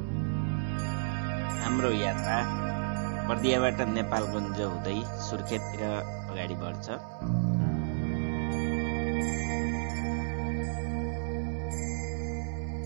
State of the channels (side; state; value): left; silent; 57 dB below the other